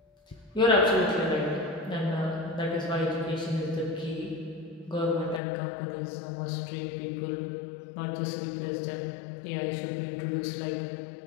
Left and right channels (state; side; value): drops out; right; at 5.4 s